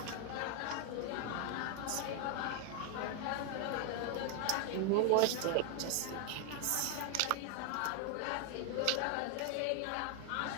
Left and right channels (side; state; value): both; different; correlation 0.00